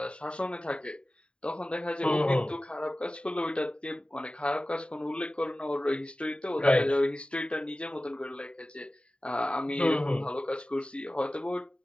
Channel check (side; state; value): right; late; 0.054 ms